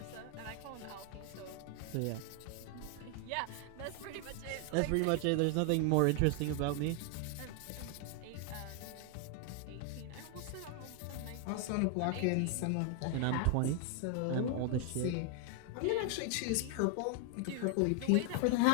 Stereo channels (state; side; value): different; both; correlation 0.00